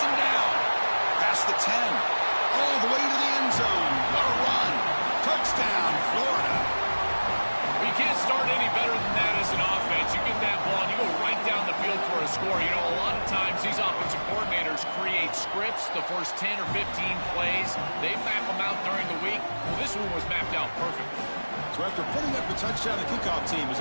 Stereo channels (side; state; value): both; inverted; correlation -1.00